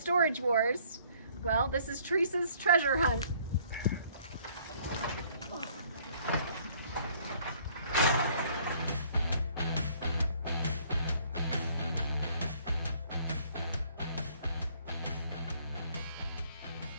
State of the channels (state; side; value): inverted; both; correlation -0.60